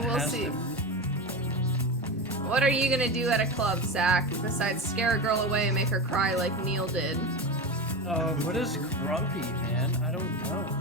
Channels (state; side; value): normal; both; correlation 0.22